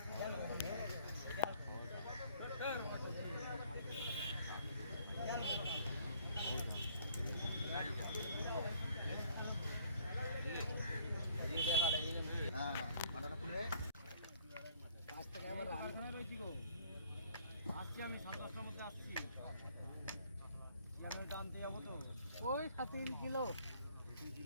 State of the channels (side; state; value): both; inverted; correlation -0.61